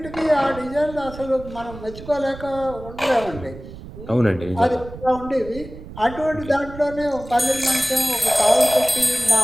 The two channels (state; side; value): noise; right; rumble, 14 dB below the sound